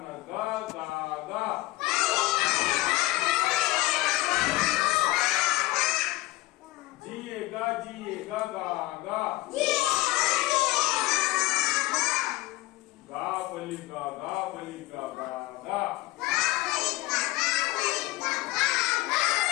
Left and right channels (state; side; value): quieter; right; 18.7 dB